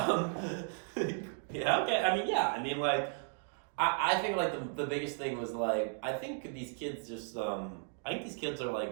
Yeah, okay. I mean, like, I think, like, the biggest thing was, like, I think these kids just, I think these kids are,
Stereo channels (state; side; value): silent; left; 54 dB below the other